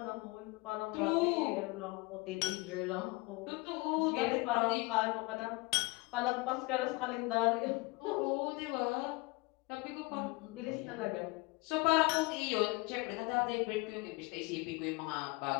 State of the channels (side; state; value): right; quieter; 24.9 dB